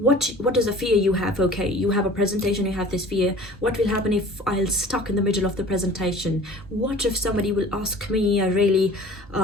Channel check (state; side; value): normal; both; correlation 0.46